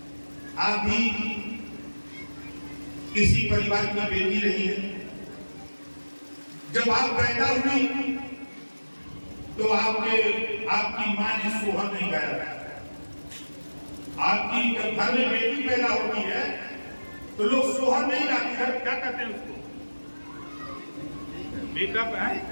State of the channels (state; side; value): inverted; both; correlation -1.00